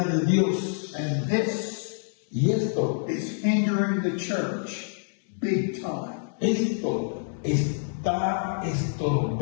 de Dios. And this Y esto is hindering the church big time. Esto está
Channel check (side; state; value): right; silent; 59 dB below the other